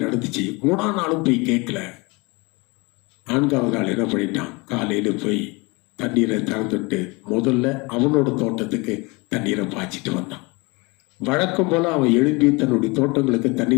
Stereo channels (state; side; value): quieter; right; 26.7 dB